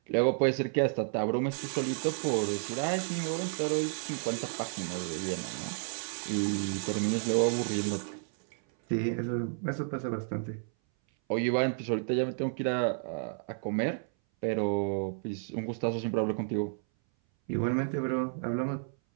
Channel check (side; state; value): left; silent; 57 dB below the other